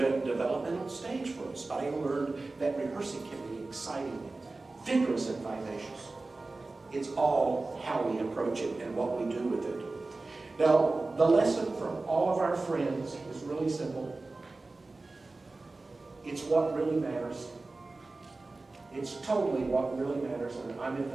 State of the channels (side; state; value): left; quieter; 3.4 dB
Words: stage for us, but I learned that rehearsing can be exciting, vigorous, and vivacious. It's all how we approach it and what we do with it. Now, The lesson from all of our friends is really simple. It's what really matters. It's totally what really matters. And I'm at